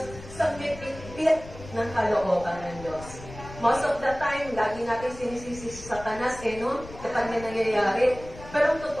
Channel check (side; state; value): left; noise; rumble, 15 dB below the sound